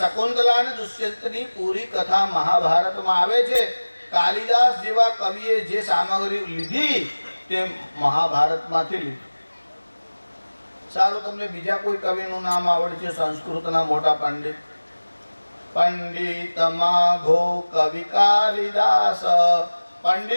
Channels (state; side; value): inverted; both; correlation -1.00